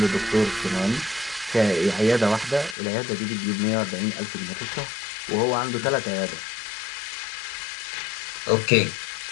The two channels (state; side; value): drops out; right; at 2.8 s